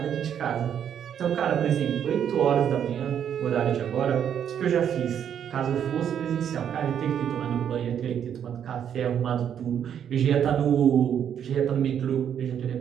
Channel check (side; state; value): left; quieter; 8.9 dB